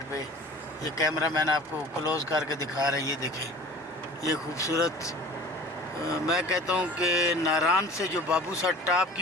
पे। ये कैमरा मैन आपको क्लोज़ करके दिखा रहा है। ये देखें ये खूबसूरत, मैं कहता हूँ कि नारायण से जो बाबू साहब टाप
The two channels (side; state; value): both; normal; correlation 0.43